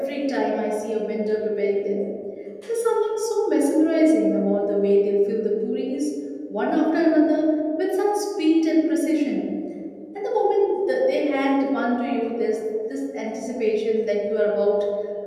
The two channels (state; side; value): identical; both; correlation 1.00